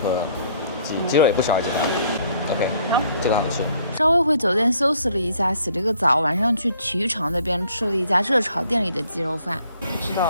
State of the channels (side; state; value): both; inverted; correlation -0.63